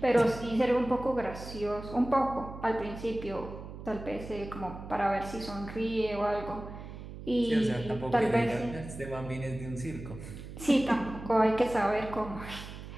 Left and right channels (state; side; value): noise; right; hum, 12 dB below the sound